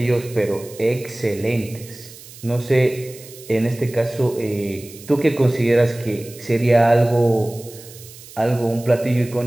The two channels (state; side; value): noise; right; hiss, 18 dB below the sound